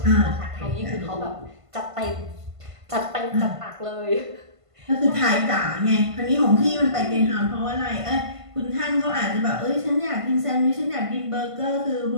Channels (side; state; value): left; late; 1.5 ms